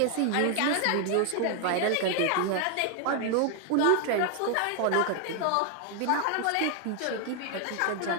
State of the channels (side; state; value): both; different; correlation 0.00